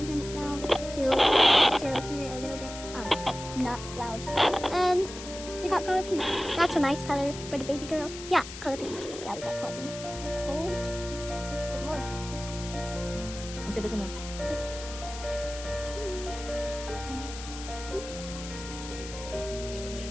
turn it down to hear it a little bit not loud. And we got color pink. That's a nice color for the baby girl. Yeah, color pink. Yeah, we got color pink. And cold. Good more. Ang tigas na.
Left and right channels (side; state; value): left; noise; hiss, 11 dB below the sound